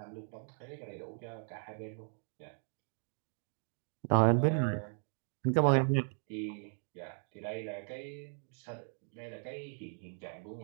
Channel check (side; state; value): left; silent; 53 dB below the other